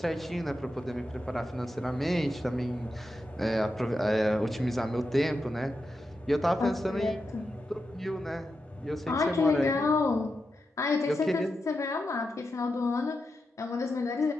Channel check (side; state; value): both; normal; correlation 0.88